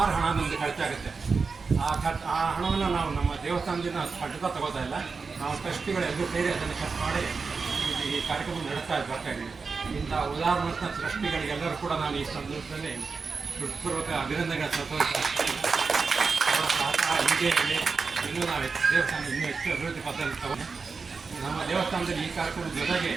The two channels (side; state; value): left; quieter; 4.8 dB